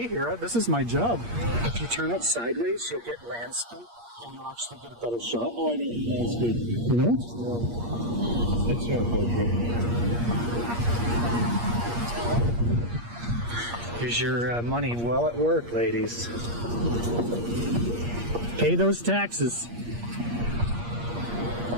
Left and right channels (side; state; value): left; late; 8.5 ms